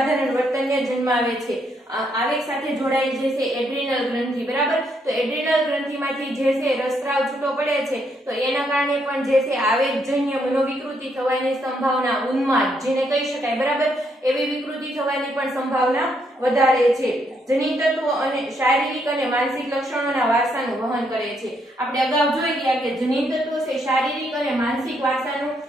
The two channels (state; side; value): normal; both; correlation 0.75